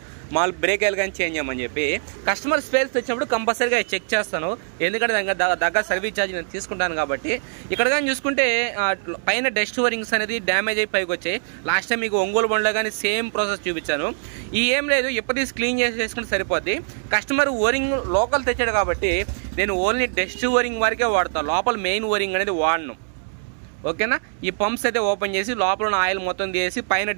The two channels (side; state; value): left; silent; digital silence